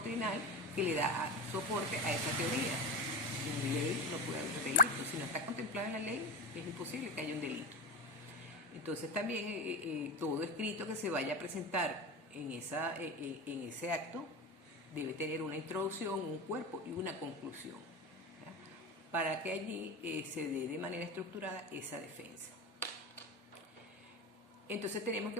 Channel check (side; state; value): both; normal; correlation 0.22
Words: que le da soporte a esa teoría. En ley no puede haber delito. Si no está contemplado en la ley, es imposible que haya un delito. Entonces también todo escrito que se vaya a presentar en ese acto debe tener una introducción, un cuerpo y una conclusión, ¿ya? Para que allí se dé de manera estructurada esa defensa. Entonces tenemos